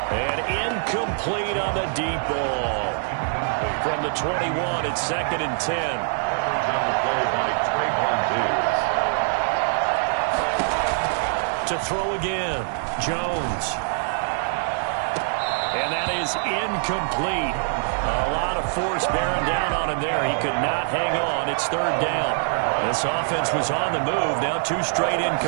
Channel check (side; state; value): left; silent; digital silence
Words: And incomplete on the deep ball. From the 21, it's 2nd and 10. To throw again, Jones. And that is incomplete. A lot of force bearing down on him there. He could not hang on. It's third down. This offense was on the move. Now 2 straight